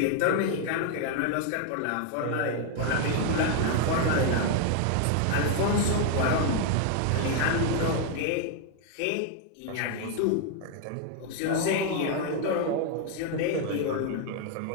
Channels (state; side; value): different; both; correlation 0.00